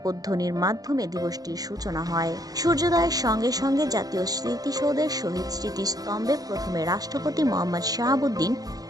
মাধ্যমে দিবসটির সূচনা হয়। সূর্যোদয়ের সঙ্গে সঙ্গে জাতীয় স্মৃতিসৌধের শহীদ স্মৃতিস্তম্ভে প্রথমে রাষ্ট্রপতি মোহাম্মদ শাহাবুদ্দিন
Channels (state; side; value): late; left; 0.18 ms